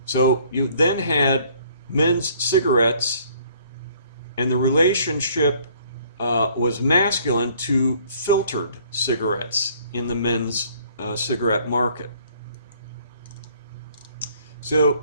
So you then had men's cigarettes, and the relationship was masculine to filtered cigarettes in the men's cigarette market.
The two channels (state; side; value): inverted; both; correlation -0.59